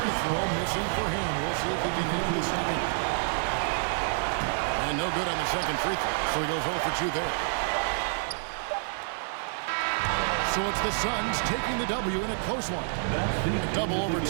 throw missing for him. We'll see if he can hit the second. And no good on the second free throw. So he goes 0 for 2 there. So it's the Suns taking the W in a close one. A double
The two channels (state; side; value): silent; left; digital silence